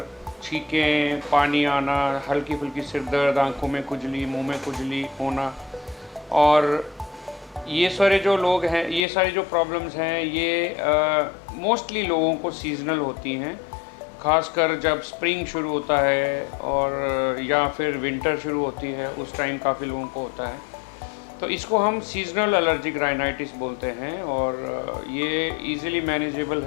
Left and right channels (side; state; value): right; drops out; at 9.1 s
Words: छींकें, पानी आना, हल्की फुल्की सिर दर्द, आँखों में खुजली, मुंह में खुजली होना। और ये सारे जो लोग हैं, ये सारी जो प्रॉब्लम्स हैं, ये मोस्टली लोगों को सीज़नल होती हैं। ख़ासकर जब स्प्रिंग शुरू होता है और या फिर विंटर शुरू होती है, उस टाइम काफ़ी लोगों को होता है। तो इसको हम सीज़नल एलर्जिक राइनाइटिस बोलते हैं और ये इजीली मैनेजेबल